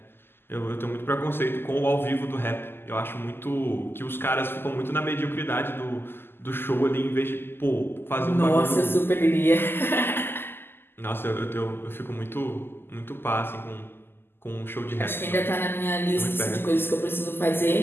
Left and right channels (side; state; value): right; late; 0.11 ms